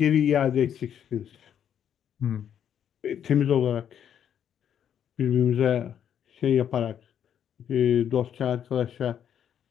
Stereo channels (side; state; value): right; quieter; 9.1 dB